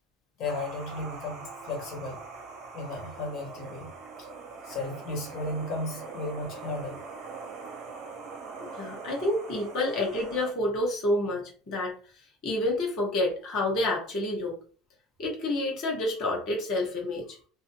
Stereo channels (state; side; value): normal; both; correlation 0.37